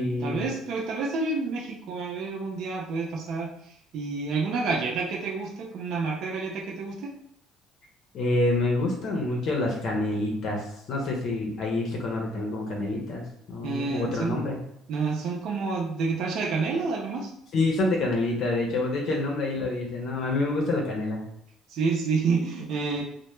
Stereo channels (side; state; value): both; normal; correlation 0.61